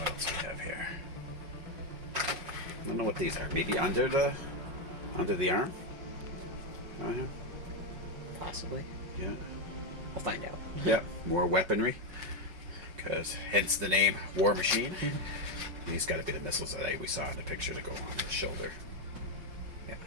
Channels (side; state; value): left; late; 5.3 ms